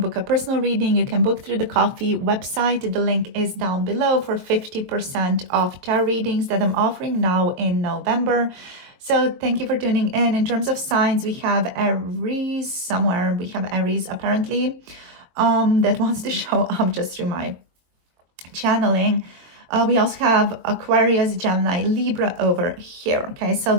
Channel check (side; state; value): left; late; 22 ms